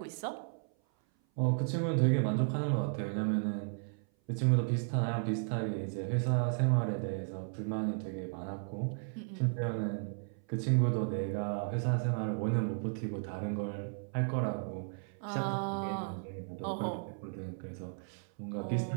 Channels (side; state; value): left; silent; 55 dB below the other